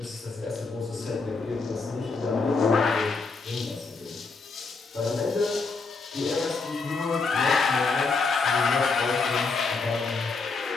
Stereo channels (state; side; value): quieter; right; 4.3 dB